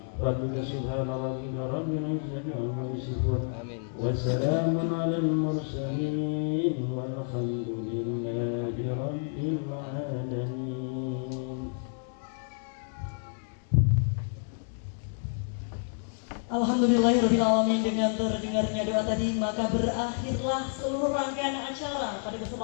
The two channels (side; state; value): right; silent; digital silence